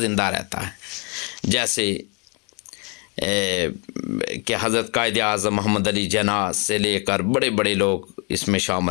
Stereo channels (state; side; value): quieter; right; 33.3 dB